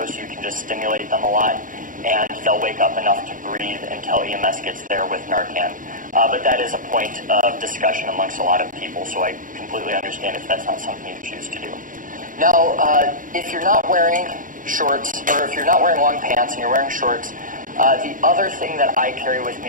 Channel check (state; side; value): late; left; 0.39 ms